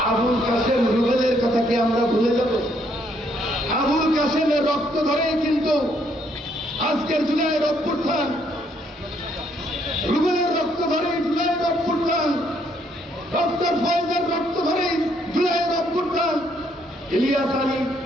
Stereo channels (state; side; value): normal; both; correlation 0.70